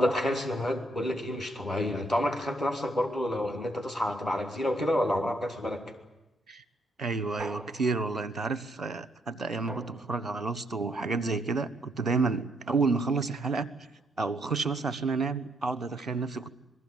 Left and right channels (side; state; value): both; normal; correlation 0.73